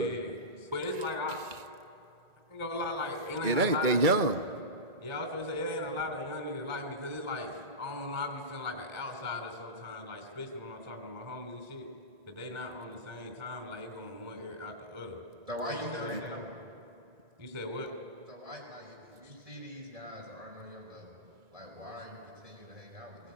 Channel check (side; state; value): left; late; 2.2 ms